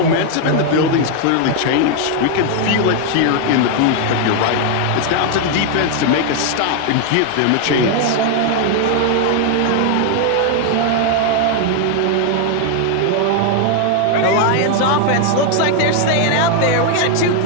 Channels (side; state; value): both; different; correlation 0.00